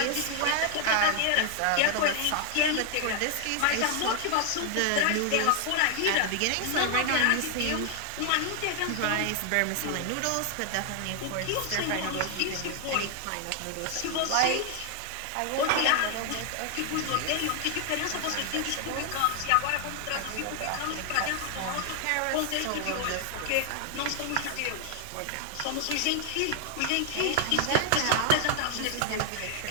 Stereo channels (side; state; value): both; different; correlation 0.00